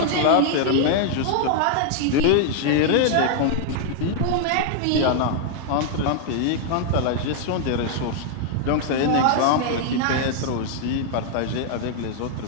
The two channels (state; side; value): different; both; correlation 0.00